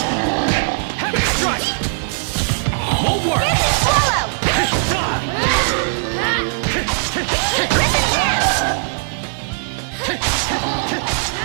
Heavy strike! Won't work!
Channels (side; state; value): left; silent; 67 dB below the other